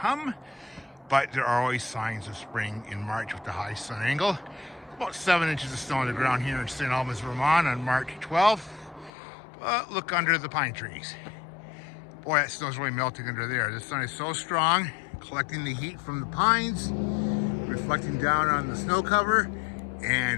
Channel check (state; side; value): drops out; right; at 9.1 s